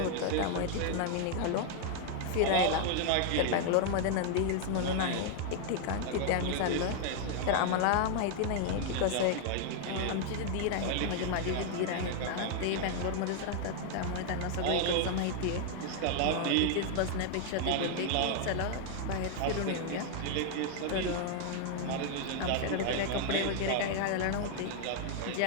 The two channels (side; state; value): both; different; correlation 0.00